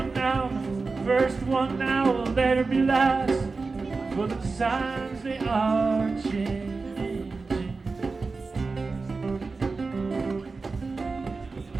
now will later be last. For the times they are changing.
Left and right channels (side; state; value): left; quieter; 4.1 dB